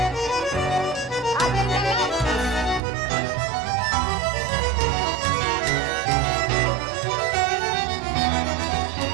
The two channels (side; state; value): left; drops out; at 2.8 s